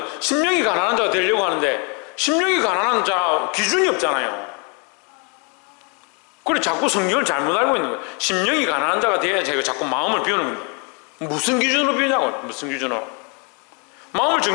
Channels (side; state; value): right; quieter; 35.0 dB